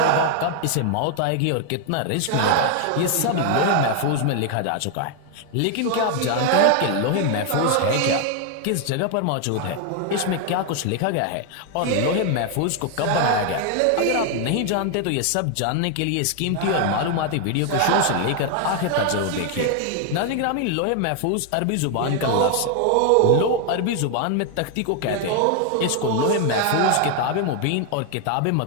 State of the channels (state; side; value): different; both; correlation 0.00